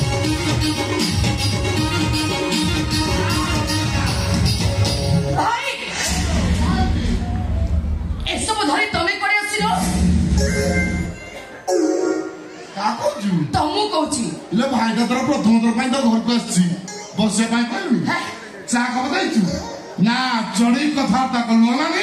तमु कहूची ले भाई का तरफ प्रथम थर पाई तो घर को आसी बसे पाई कहलु चा को बताइछु ना चढ़ी कथा ता कलु ना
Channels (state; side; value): identical; both; correlation 1.00